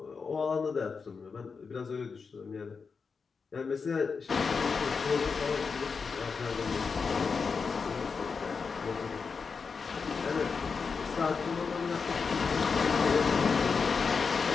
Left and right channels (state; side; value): quieter; right; 5.2 dB